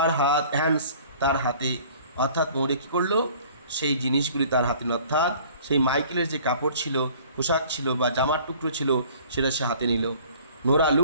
হ্যান্ডস, তার হাতে। অর্থাৎ মৌরিয়া কী করলো? সেই জিনিসগুলি তার হাতে, অর্থাৎ সেই মাইকেলের যে কাপড় ছিল, পোশাক ছিল বা জামার টুকরো ছিল, সেটা সে হাতে নিল। নোরা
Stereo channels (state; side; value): inverted; both; correlation -0.51